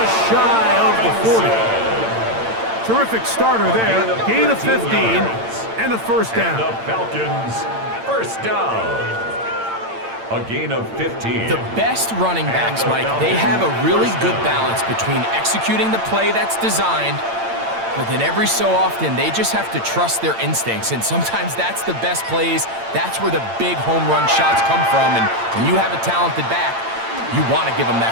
shy of the 40. Terrific starter there. Gain of 15 and a 1st down. And the Falcons, 1st down. A gain of 15. The best running backs, Mike, they have a really good balance between executing the play that's designed, but then every so often, they just have to trust their instincts, and sometimes that's the best plays. That's where the big home run shots come from, and when you have a talented back, you want to give them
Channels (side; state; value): left; late; 8.8 ms